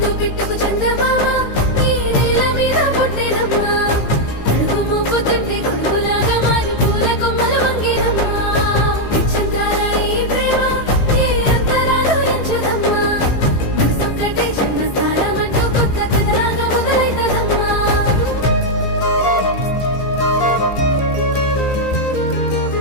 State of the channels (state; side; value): late; right; 15 ms